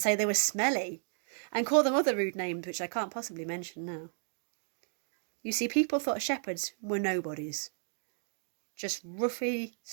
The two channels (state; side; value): silent; left; digital silence